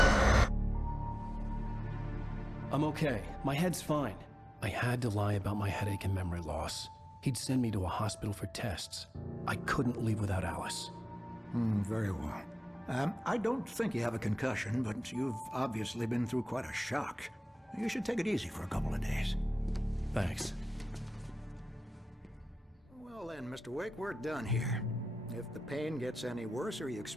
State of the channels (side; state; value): both; normal; correlation 0.96